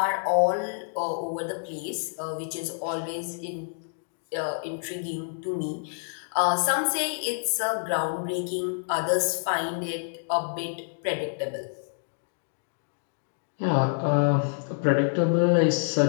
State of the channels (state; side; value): silent; right; digital silence